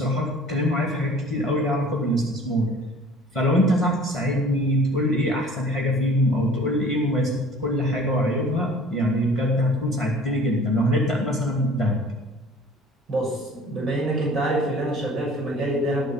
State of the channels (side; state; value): both; normal; correlation 0.48